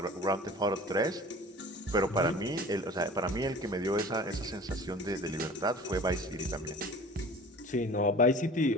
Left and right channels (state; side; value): normal; both; correlation 0.42